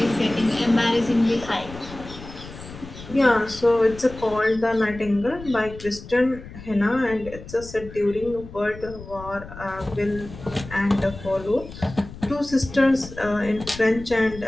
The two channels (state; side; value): noise; left; rumble, 15 dB below the sound